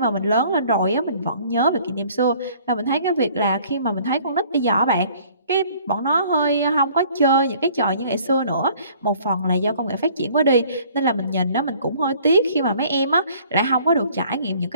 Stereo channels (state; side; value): inverted; both; correlation -0.56